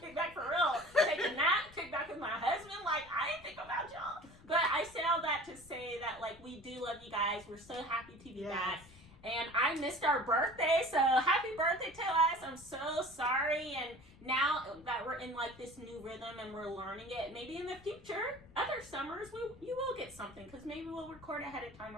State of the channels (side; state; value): left; noise; rumble, 22 dB below the sound